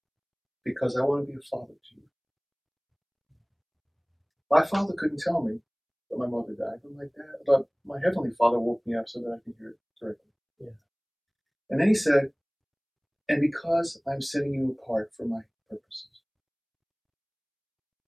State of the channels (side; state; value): both; identical; correlation 1.00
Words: "Because I want to be a father to you." My father couldn't tell me that my mother died, but my heavenly Father woke me up so that I could hear it directly. Yeah. And then he said, "And because I'm setting you apart for my purposes."